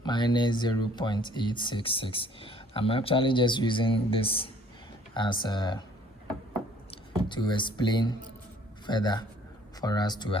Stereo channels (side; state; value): both; normal; correlation 0.57